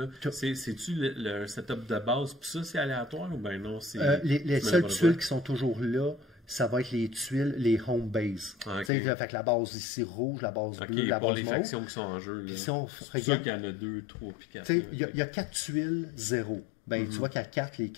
c'est-tu le setup de base? Puis ça, c'est aléatoire ou ben non? Les seules tuiles qui sont toujours là, ça va être les tuiles, les home base. Ah, okay. Fait que la base ici rouge, la base bleue, la base mauve. Les factions qui sont en jeu. C'est sûr qu'il y en a 2, 3, puis 4. Il y a 4 tuiles, 0. Ben, tu vois qu'il y a 4, les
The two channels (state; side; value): drops out; right; at 8.9 s